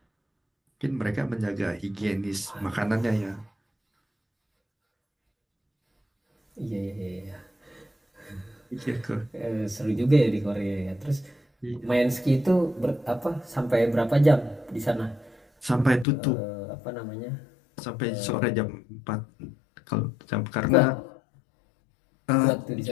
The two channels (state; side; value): drops out; right; at 16.1 s